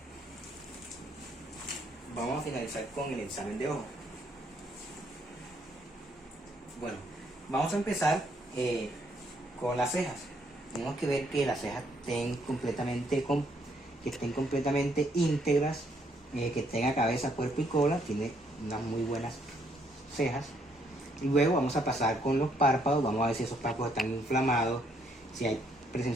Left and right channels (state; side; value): normal; both; correlation 0.70